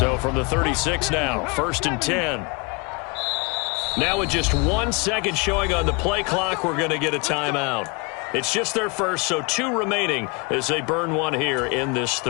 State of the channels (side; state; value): right; quieter; 30.5 dB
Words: from the 36 now, 1st and 10. Now with just 1 second showing on the play clock, we're going to get a timeout. It's just their first, so 2 remaining as they burn one here in this